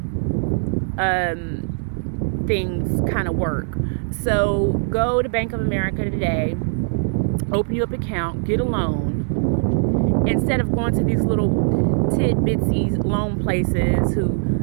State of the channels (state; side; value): silent; left; 65 dB below the other